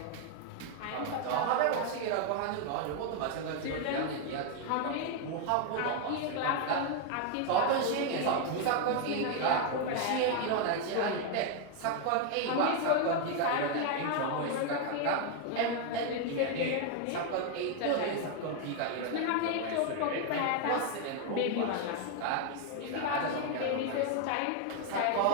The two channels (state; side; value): different; both; correlation 0.00